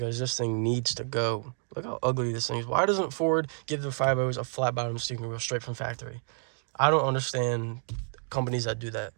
this thing needs to go. Look how ugly this thing is. Why doesn't Ford give the 5.0s a flat bottom steering wheel straight from factory? I don't understand companies that do that,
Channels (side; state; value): left; silent; digital silence